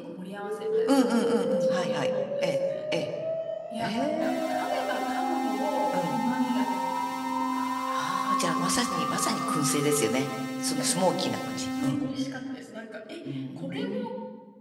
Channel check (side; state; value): both; identical; correlation 1.00